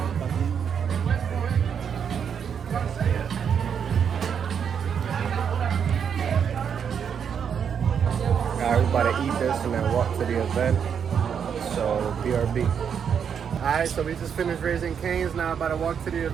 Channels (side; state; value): left; quieter; 7.5 dB